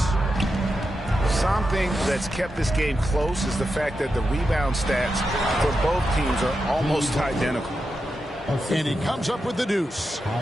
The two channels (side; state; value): both; normal; correlation 0.88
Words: Something that's kept this game close is the fact that the rebound stats for both teams are almost identical. And he comes up with the deuce.